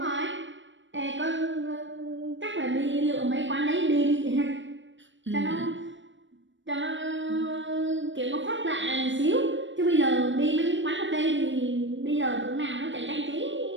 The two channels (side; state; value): left; late; 0.55 ms